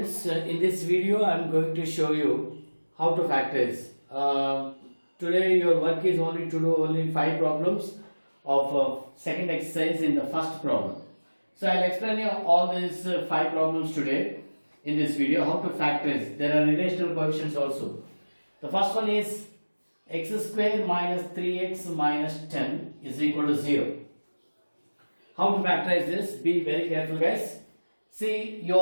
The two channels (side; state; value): both; inverted; correlation -1.00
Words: in this video I am going to show you how to factorize. Today your work is only to do only 5 problems of second exercise in the first problem. So I will explain you all these 5 problems today in this video, how to factorize. There are relational coefficients also. The first one is x square minus 3x minus 10 is equal to 0. How to factorize this? Be very careful guys. See,